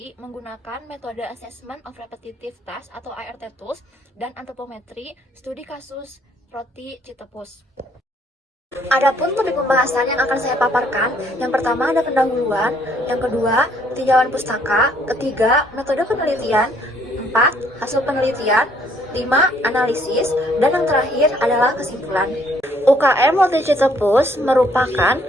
menggunakan metode Assessment of Repetitive Task atau ART Tools dan antropometri studi kasus roti Citepus. Adapun topik pembahasan yang akan saya paparkan, yang pertama ada pendahuluan, yang kedua tinjauan pustaka, ketiga metode penelitian, 4 hasil penelitian, 5 analisis, dan yang terakhir adalah kesimpulan. UKM Roti Citepus merupakan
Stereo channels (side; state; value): both; normal; correlation 0.65